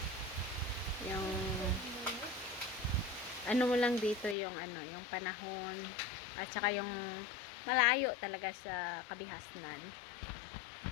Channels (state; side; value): drops out; right; at 4.4 s